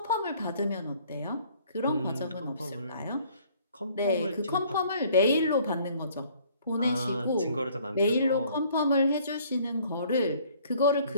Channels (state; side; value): inverted; both; correlation -0.58